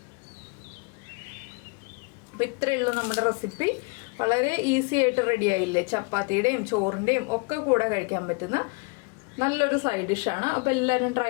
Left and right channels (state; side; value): quieter; right; 31.8 dB